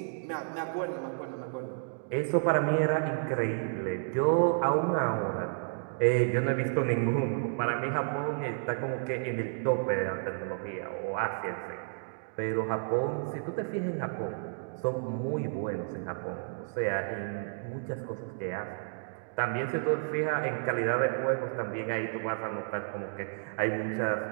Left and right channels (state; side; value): silent; left; digital silence